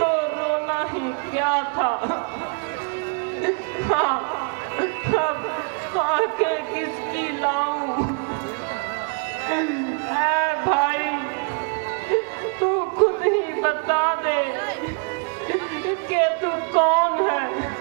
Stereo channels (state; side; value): quieter; left; 39.0 dB